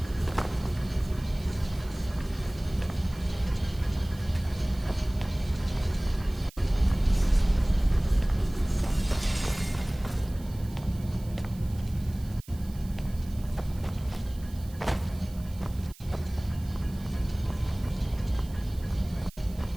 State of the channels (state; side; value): noise; right; hiss, 22 dB below the sound